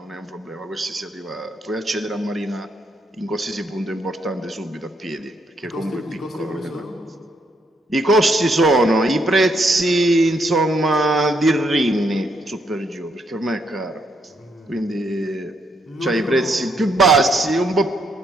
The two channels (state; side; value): normal; both; correlation 0.75